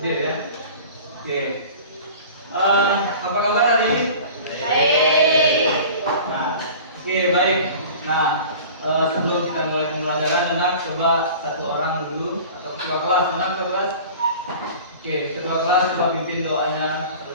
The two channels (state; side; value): inverted; both; correlation -0.41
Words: Dia ya. Oke. Apa kabar hari ini? Baik. Nah, oke baik. Nah, sebelum kita mulai pembelajaran, anak coba satu orang dulu atau ketua kelas, anak ketua kelas. Oke, ketua kelas coba pimpin doanya